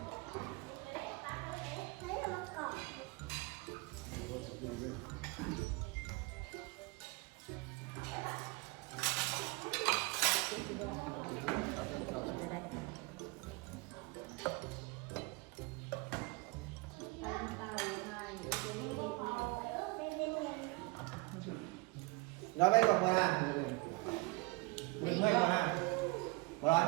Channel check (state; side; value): quieter; left; 23.9 dB